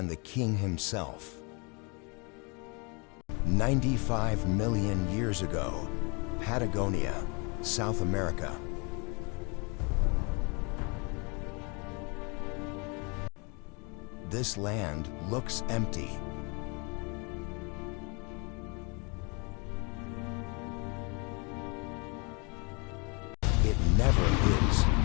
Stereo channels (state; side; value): quieter; right; 31.7 dB